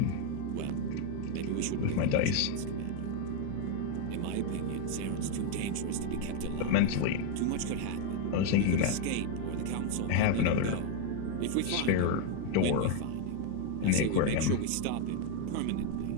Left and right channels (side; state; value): both; different; correlation 0.01